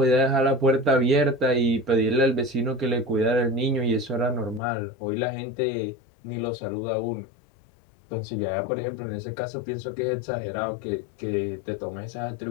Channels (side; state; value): right; drops out; at 4.6 s